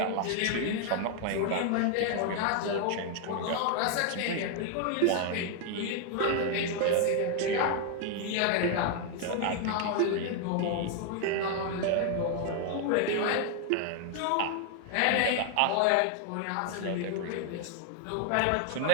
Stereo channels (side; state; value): both; different; correlation 0.00